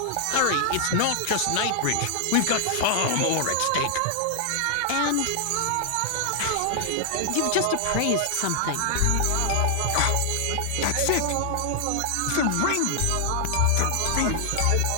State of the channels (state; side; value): different; both; correlation 0.00